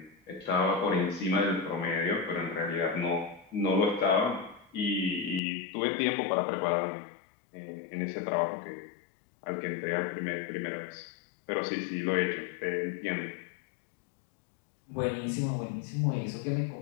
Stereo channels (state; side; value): drops out; right; at 5.4 s